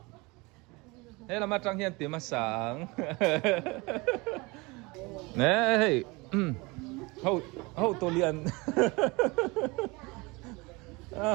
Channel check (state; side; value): quieter; left; 25.2 dB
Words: thế là mà trang hiền tiếng mà sáng nè hey hậu tổ liền